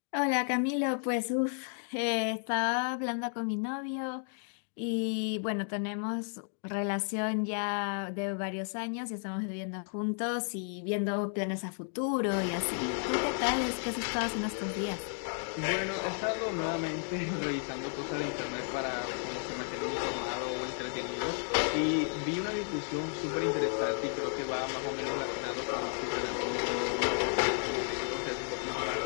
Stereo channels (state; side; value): silent; right; 56 dB below the other